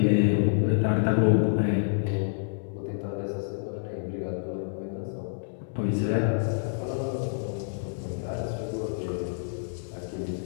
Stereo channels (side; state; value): right; silent; 59 dB below the other